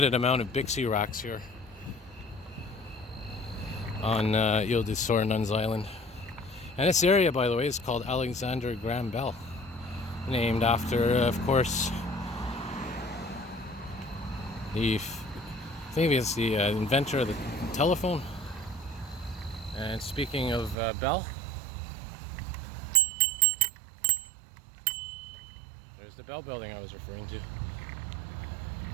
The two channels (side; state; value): left; drops out; at 20.8 s